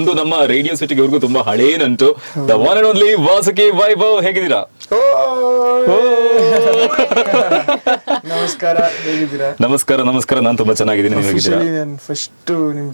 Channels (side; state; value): both; inverted; correlation -1.00